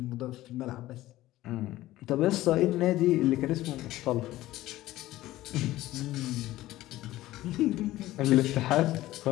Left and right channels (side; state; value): right; quieter; 16.0 dB